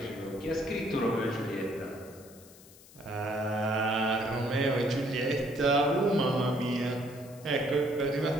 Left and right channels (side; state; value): left; noise; hiss, 22 dB below the sound